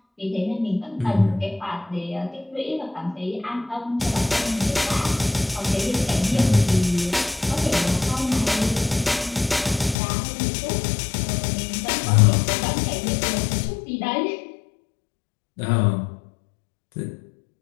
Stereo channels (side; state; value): right; drops out; at 10.0 s